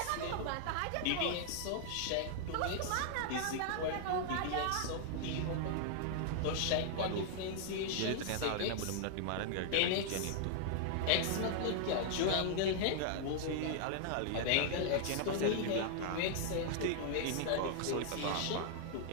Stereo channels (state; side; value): different; both; correlation -0.01